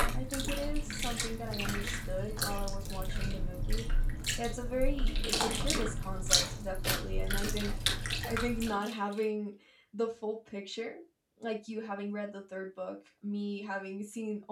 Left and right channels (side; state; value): both; identical; correlation 1.00